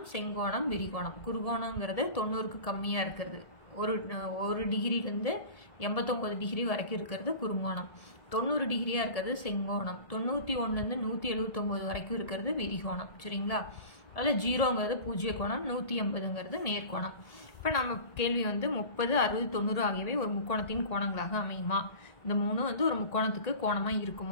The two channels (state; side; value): late; right; 1.7 ms